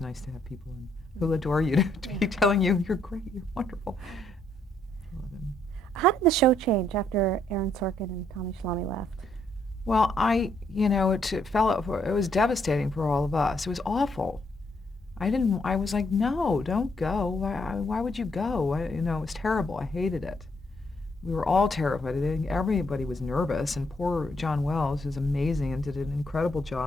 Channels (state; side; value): normal; both; correlation 0.72